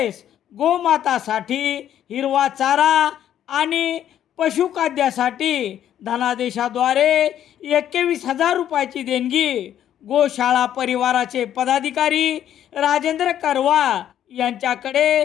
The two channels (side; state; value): right; quieter; 10.7 dB